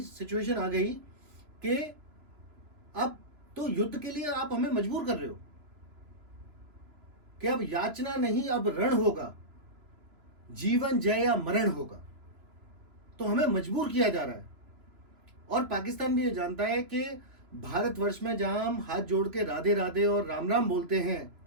सिचुएशन आ गई कि अब तो युद्ध के लिए आप हमें मजबूर कर रहे हो कि अब याचना नहीं, अब रण होगा, जीवन जय या मरण होगा। तो हमें मजबूर किया जा रहा है। और पाकिस्तान भी ये जानता है कि भारतवर्ष में जहां हम हाथ जोड़ के राधे राधे और राम राम बोलते हैं,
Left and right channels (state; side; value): late; left; 3.0 ms